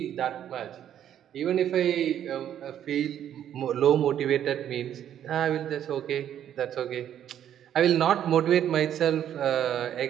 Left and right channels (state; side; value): quieter; left; 10.3 dB